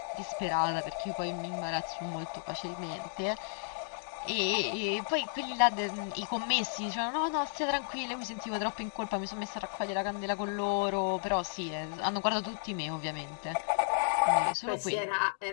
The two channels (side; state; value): right; silent; digital silence